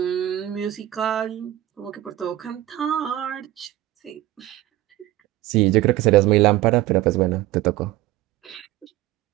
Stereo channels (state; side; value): quieter; left; 15.1 dB